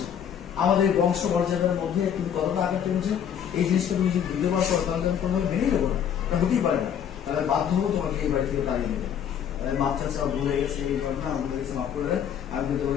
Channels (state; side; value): quieter; right; 8.7 dB